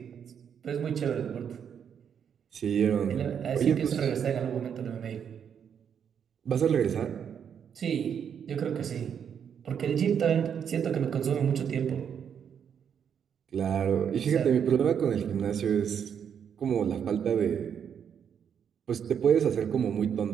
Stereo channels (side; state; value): left; quieter; 7.9 dB